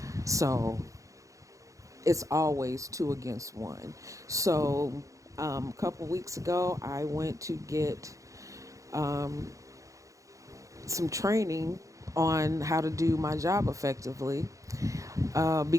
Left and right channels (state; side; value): late; left; 0.16 ms